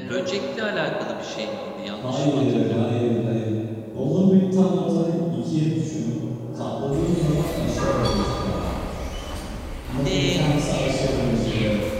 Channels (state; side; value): identical; both; correlation 1.00